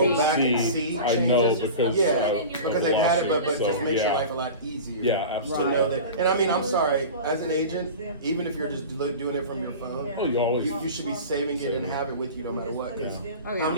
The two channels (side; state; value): both; inverted; correlation -0.33